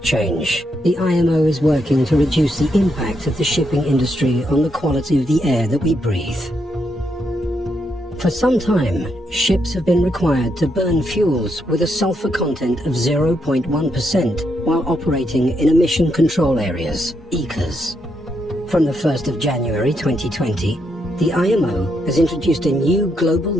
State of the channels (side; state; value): both; normal; correlation 0.79